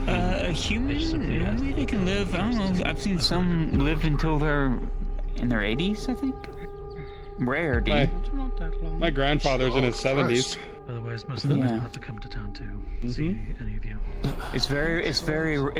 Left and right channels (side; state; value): both; identical; correlation 1.00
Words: it. A human? Maybe they can live, I don't know, I've seen some live until they're in their 80s, I think. Rare, dude. My grandfather's in his 70s. Otherwise, most of them have to come to town to see any of you. It's very